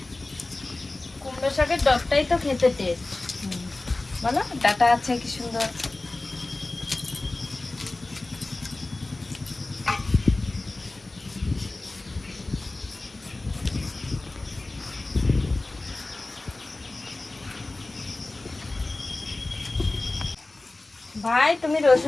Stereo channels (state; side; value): quieter; right; 3.0 dB